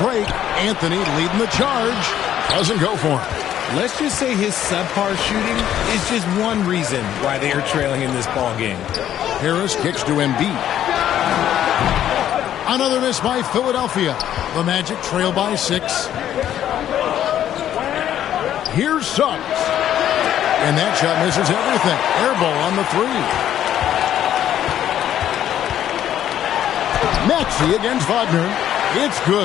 break. Anthony leading the charge. Doesn't go for him. Let's just say his subpar shooting is just one reason why they are trailing in this ball game. Harris kicks to Embiid. Another miss by Philadelphia. The Magic trail by 6. Here's Suggs. And that shot misses everything. Air ball on the 3. Maxey against Wagner. It's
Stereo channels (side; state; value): right; quieter; 11.0 dB